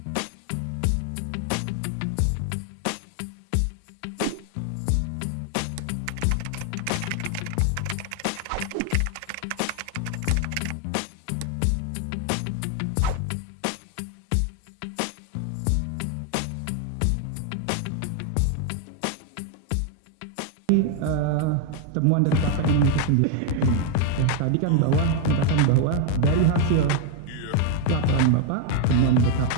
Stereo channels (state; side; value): different; both; correlation 0.01